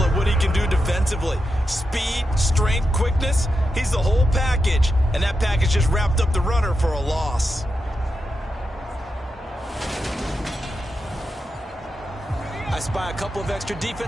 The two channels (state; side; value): normal; both; correlation 0.88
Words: what he can do defensively. Speed, strength, quickness, he's the whole package. And that package just wrapped up the runner for a loss. I spy a couple of extra